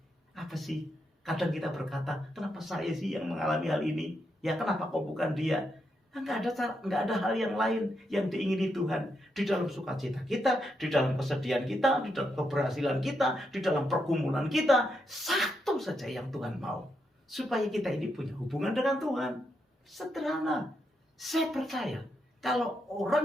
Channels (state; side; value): normal; both; correlation 0.82